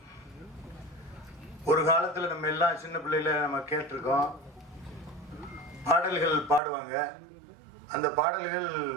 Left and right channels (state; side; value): drops out; left; at 6.6 s